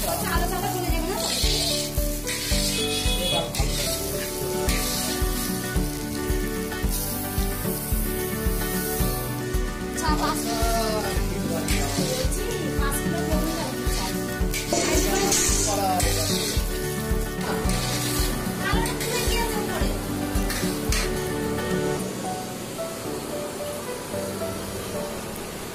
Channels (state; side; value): identical; both; correlation 1.00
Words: আলো টাকা চলে যাবে না। এবার ভালো লাগবে। চা 5 কিলো বলছি, 5 কিলো